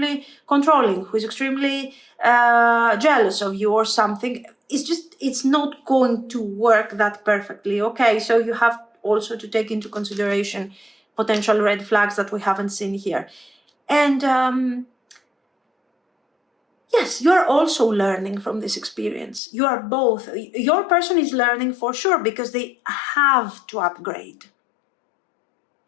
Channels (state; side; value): drops out; right; at 19.4 s